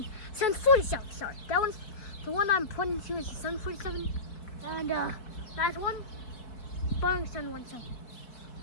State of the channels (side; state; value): right; late; 4.7 ms